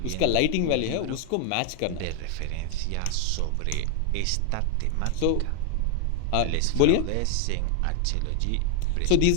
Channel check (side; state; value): both; different; correlation 0.00